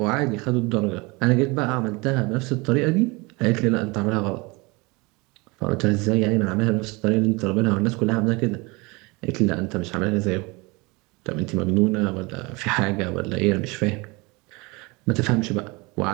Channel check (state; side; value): quieter; left; 25.9 dB